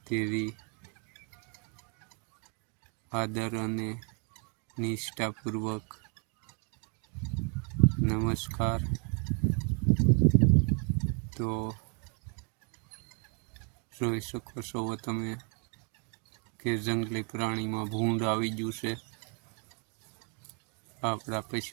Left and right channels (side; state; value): left; quieter; 36.6 dB